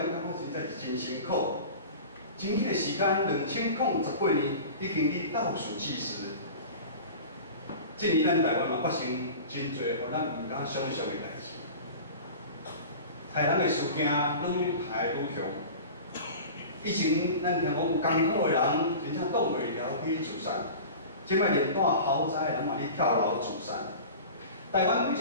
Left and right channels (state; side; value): inverted; both; correlation -0.36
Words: 感觉实在是真辛苦。真紧的时间，2018年已经去倒数计时。这年咱台湾嘛发生真侪互咱毋敢想象的代志。害人的事件愈害愈强。以前咱听讲有艰苦的人，真正挡袂牢去自杀。即摆连住豪宅的人嘛，去跳楼自杀。台湾